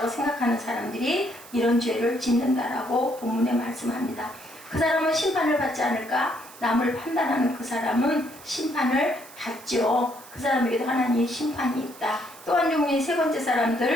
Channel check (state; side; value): noise; right; hiss, 19 dB below the sound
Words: 생각하는 사람들이 이런 죄를 짓는다라고 본문에 말씀합니다. 그 사람은 심판을 받지 않을까? 남을 판단하는 그 사람은 심판을 받죠. 그 사람에게도 하나님의 심판이 있다. 또 한 종류의 세 번째